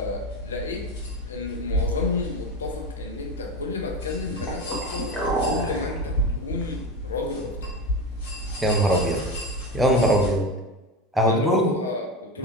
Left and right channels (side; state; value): both; normal; correlation 0.22